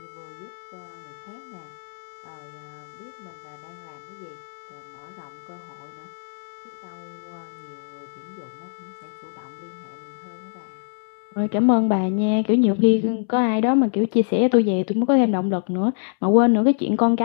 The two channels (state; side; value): silent; right; 62 dB below the other